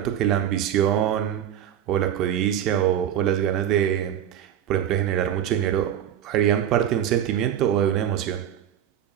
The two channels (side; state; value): left; quieter; 10.1 dB